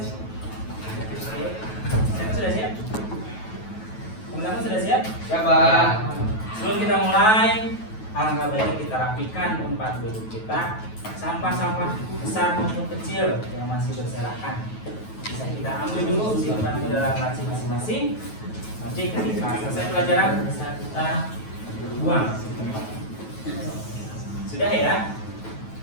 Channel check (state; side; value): late; right; 9.2 ms